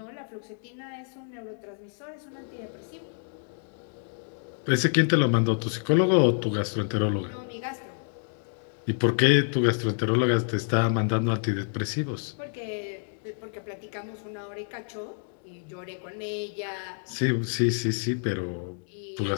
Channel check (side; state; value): right; silent; digital silence